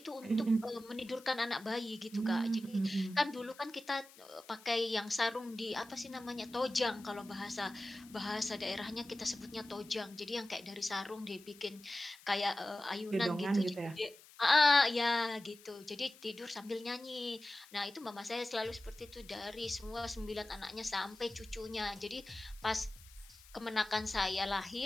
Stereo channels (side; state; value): left; noise; hiss, 22 dB below the sound